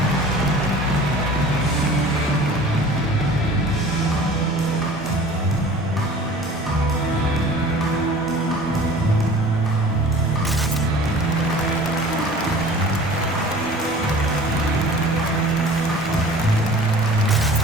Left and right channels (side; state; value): both; normal; correlation 0.44